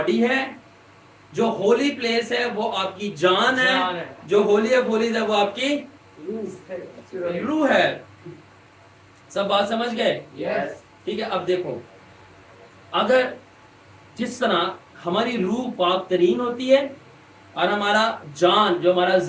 ہے جو ہولی پلیس ہے وہ آپ کی جان ہے جو ہولی آف ہولیز ہے وہ آپ کی روح ہے. سب بات سمجھ گئے. Yes. ٹھیک ہے اب دیکھو اگر جس طرح ہماری روح پاک ترین ہوتی ہے اور ہمارا جان جو ہمارا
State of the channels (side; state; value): both; identical; correlation 1.00